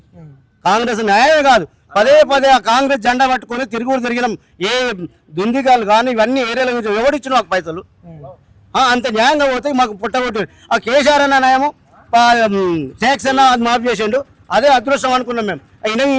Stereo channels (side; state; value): both; identical; correlation 1.00